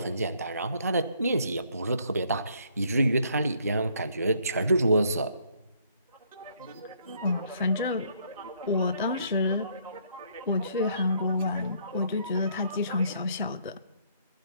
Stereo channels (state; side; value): inverted; both; correlation -0.66